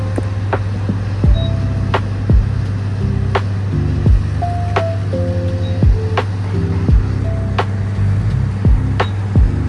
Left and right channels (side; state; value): both; identical; correlation 1.00